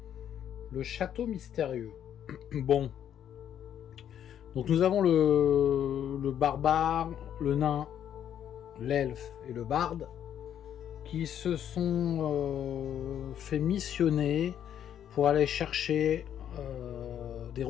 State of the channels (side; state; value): right; quieter; 9.8 dB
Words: le château mystérieux. Bon, donc nous avons le barbare, le nain, l'elfe et le barde qui se sont fait missionner pour aller chercher des